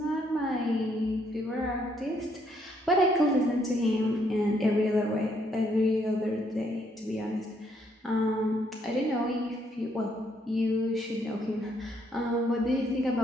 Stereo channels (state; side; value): normal; both; correlation 0.71